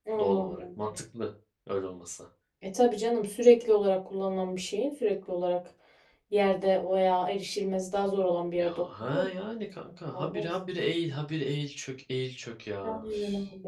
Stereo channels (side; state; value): both; identical; correlation 1.00